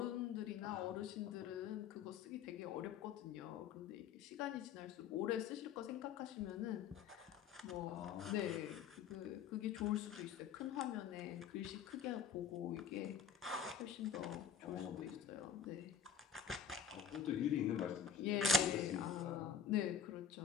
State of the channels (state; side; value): quieter; right; 7.1 dB